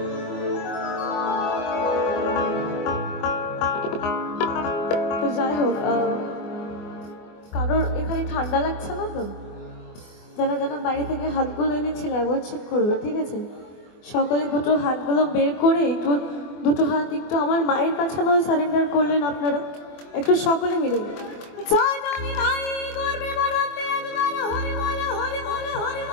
তো যাই হোক, কারোর এখানে ঠান্ডা লাগছে না তো? যারা যারা বাইরে থেকে হাতগুলো এনেছিল একবার চেক করবে, ঠিক আছে? সকলে দুটো হাতগুলো বের করে একটু দুটো হাত একটু আমার মায়ের কাছে নয় সারেন্ডার করলেন আপনারা একটু সকলে মিলে। জয় জানি নাই গর্বে বানাতে একবার হরি বলে হরি বলে হরি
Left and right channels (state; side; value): late; right; 24 ms